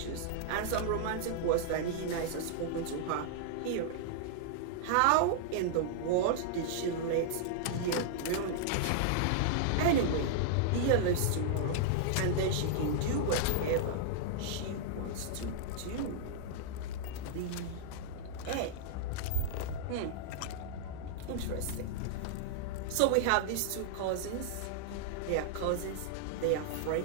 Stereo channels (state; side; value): different; both; correlation -0.01